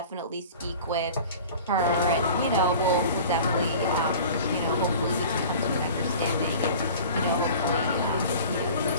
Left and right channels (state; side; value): inverted; both; correlation -0.41